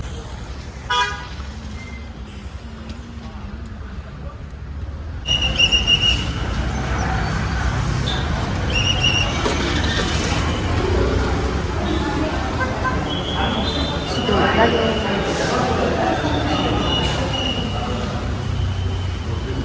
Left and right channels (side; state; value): both; identical; correlation 1.00